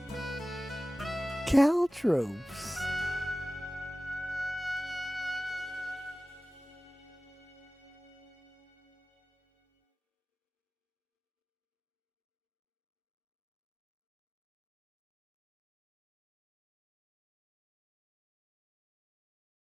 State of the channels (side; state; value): both; normal; correlation 0.97